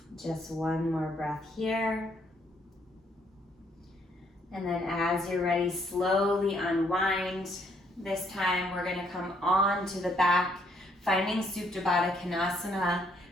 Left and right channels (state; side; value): normal; both; correlation 0.69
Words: Just one more breath here. And then as you're ready, slowly unwind. This time we're gonna come on to the back, finding Supta Baddha Konasana,